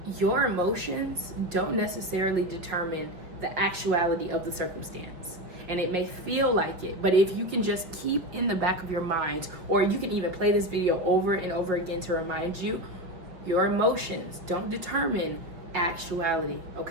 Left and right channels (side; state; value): left; late; 5.3 ms